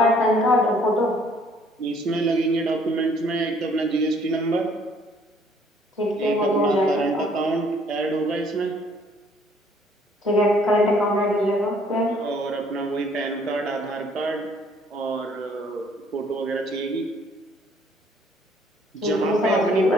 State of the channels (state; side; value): normal; both; correlation 0.61